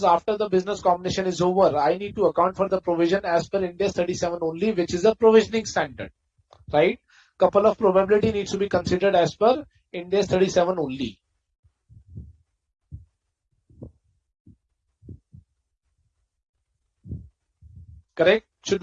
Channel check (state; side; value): identical; both; correlation 1.00